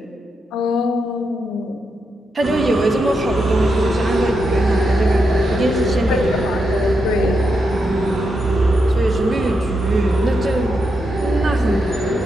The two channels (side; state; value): both; normal; correlation 0.84